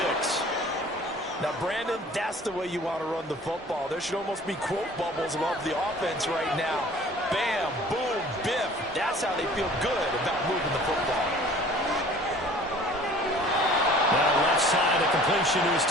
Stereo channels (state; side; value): normal; both; correlation 0.49